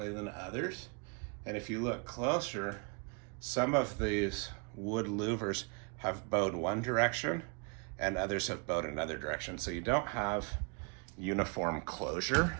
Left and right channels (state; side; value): quieter; left; 34.9 dB